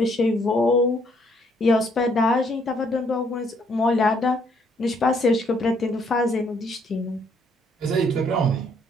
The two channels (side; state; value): both; normal; correlation 0.67